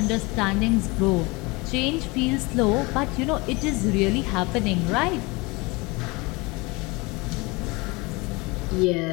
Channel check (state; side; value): quieter; right; 25.3 dB